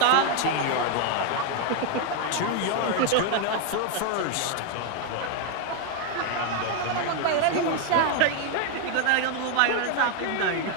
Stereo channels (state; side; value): different; both; correlation 0.01